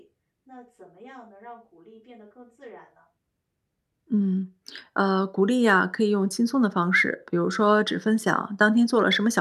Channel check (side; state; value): both; identical; correlation 1.00